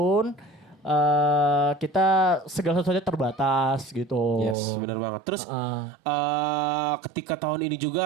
kita segala sesuatunya terbatas gitu. Yes, benar banget. Terus ketika tahun ini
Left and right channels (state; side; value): drops out; left; at 4.5 s